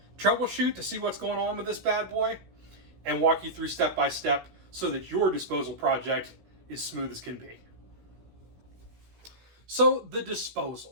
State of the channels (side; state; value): left; late; 16 ms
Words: troubleshoot to see what's going on with this bad boy, and walk you through step by step so that your disposal project is smooth as can be. So the